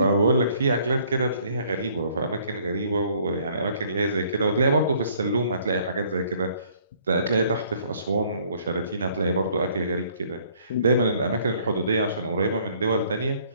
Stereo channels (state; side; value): inverted; both; correlation -0.62